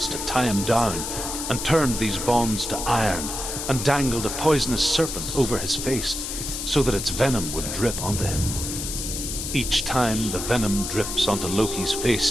to tie him down and turned these bonds to iron and dangled a poisonous serpent over his face so that its venom would drip onto him. Each time the venom drips onto Loki's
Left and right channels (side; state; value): left; noise; hiss, 5 dB below the sound